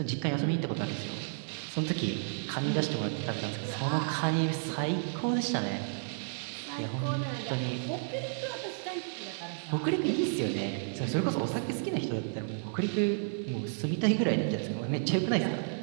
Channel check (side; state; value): left; silent; 56 dB below the other